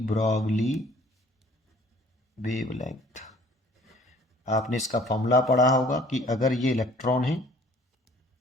ब्रॉगली वेवलेंथ। आपने इसका फॉर्मूला पढ़ा होगा कि अगर ये इलेक्ट्रॉन है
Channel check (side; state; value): both; normal; correlation 0.54